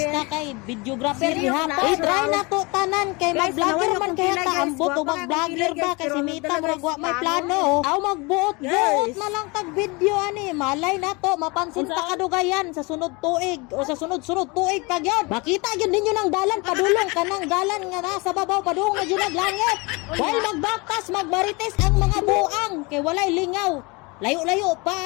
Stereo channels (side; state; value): right; quieter; 27.1 dB